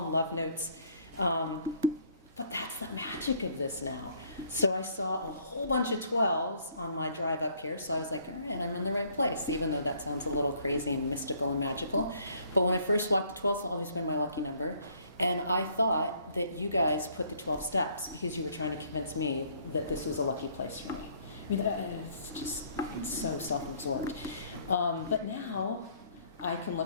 love notes. But that's the magic of this now. So I saw a whole bunch of 12s on my drive up here, so I was like, all right, I'm in the right place, even though that sounds a little crazy and mystical and magical. But when I first walked, the 12s has always been my lucky number, and I thought that you guys put the 12 steps because you were trying to convince me that this was a lucky place for me. I mean, it's just so self-absorbed. But now I can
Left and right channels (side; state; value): both; inverted; correlation -0.62